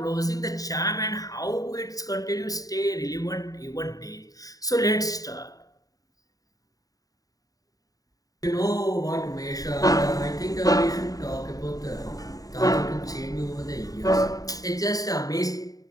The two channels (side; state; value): right; late; 0.18 ms